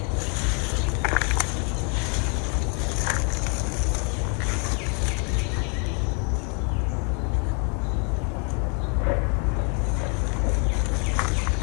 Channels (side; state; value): right; quieter; 32.7 dB